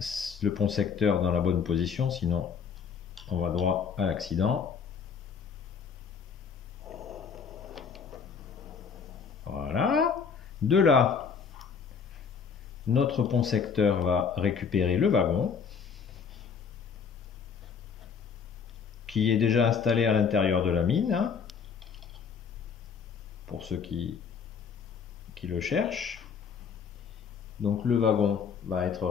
pont secteur dans la bonne position, sinon on va droit à l'accident. Voilà. De là, notre pont secteur va récupérer le wagon qui est déjà installé à l'intérieur de la mine, hein, pour ceux qui le cherchent. Donc le wagon va être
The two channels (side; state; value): right; quieter; 6.3 dB